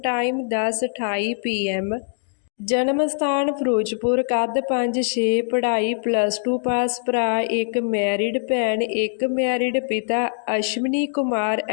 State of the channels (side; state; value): right; silent; digital silence